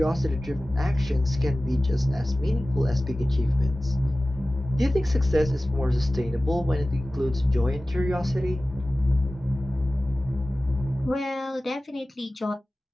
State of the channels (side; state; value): both; normal; correlation 0.96